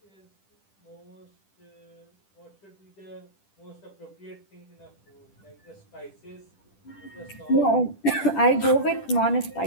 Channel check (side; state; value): right; late; 10 ms